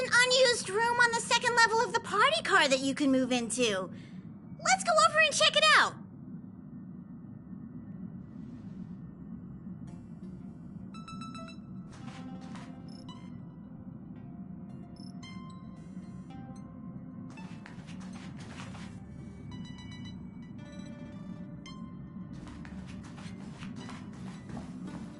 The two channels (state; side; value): identical; both; correlation 1.00